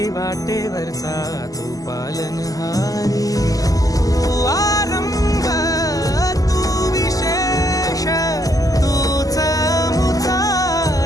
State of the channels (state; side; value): late; right; 0.17 ms